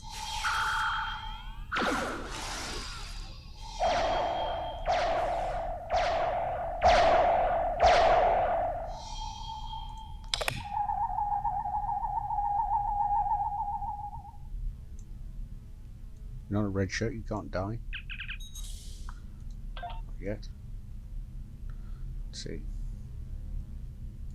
You're not a red shirt, you can't die. Not yet. Let's see.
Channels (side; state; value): both; identical; correlation 1.00